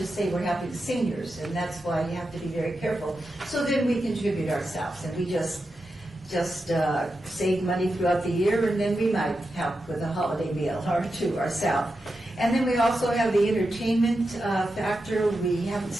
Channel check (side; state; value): both; normal; correlation 0.89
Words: say we're helping seniors, and that's why you have to be very careful. So then we contribute ourselves, and we just save money throughout the year, and then we might help with a holiday meal or two ourselves. And then we also have the entertainment factor. We haven't